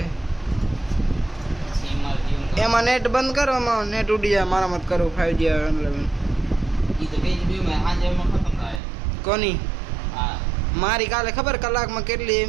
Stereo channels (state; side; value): drops out; left; at 8.8 s